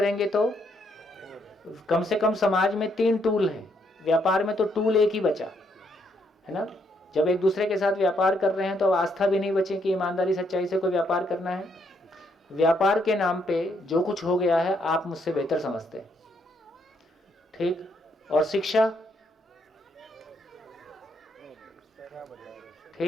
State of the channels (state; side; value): normal; both; correlation 0.73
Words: तो कम से कम समाज में 3 टूल हैं, व्यापार में तो टूल एक ही बचा है ना। जब एक दूसरे के साथ व्यापार कर रहे हैं तो आस्था भी नहीं बची कि ईमानदारी सच्चाई से कोई व्यापार करना है। व्यापार के नाम पे जो कुछ हो गया है आप मुझसे बेहतर समझते हैं, ठीक। और शिक्षा,